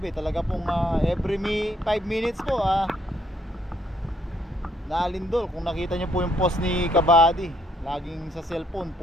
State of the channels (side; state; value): both; normal; correlation 0.70